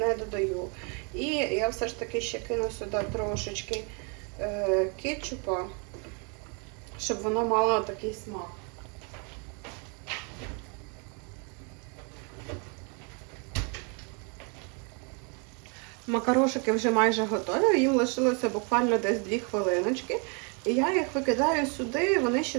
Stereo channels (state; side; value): quieter; left; 35.6 dB